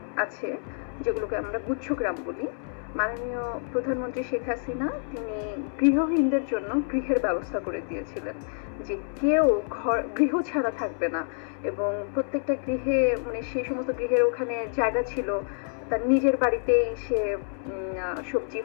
আছে, যেগুলোকে আমরা গুচ্ছ গ্রাম বলি। মাননীয় প্রধানমন্ত্রী শেখ হাসিনা তিনি গৃহহীনদের জন্য গৃহের ব্যবস্থা করে দিয়েছিলেন, যে কেউ গৃহ ছাড়া থাকবে না। এবং প্রত্যেকটা গৃহে, মানে সেই সমস্ত গৃহের ওখানে জায়গা ছিল, তার নিজের বাড়িতে সে সবজি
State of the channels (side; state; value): right; silent; 59 dB below the other